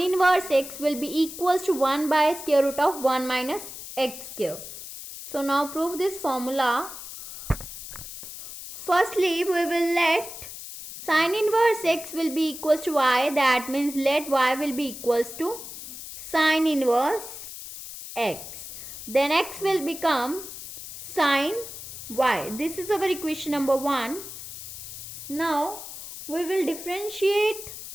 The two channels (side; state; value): left; noise; hiss, 11 dB below the sound